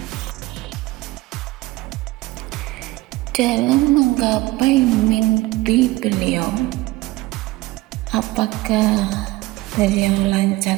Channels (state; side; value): quieter; left; 19.4 dB